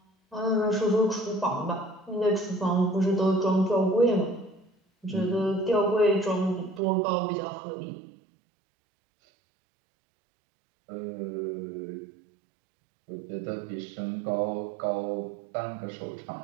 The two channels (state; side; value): drops out; left; at 6.8 s